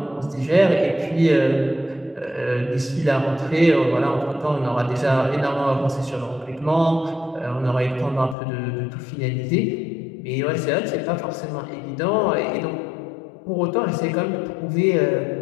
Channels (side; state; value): right; drops out; at 8.3 s